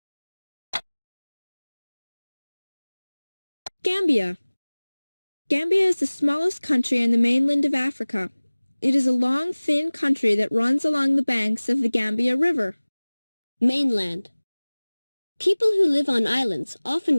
Gambia. Gambia is the smallest country in the mainland of Africa. It is a long, thin country that runs along the banks of the Gambia River. Mainland. People who live on islands often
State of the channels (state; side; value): inverted; both; correlation -1.00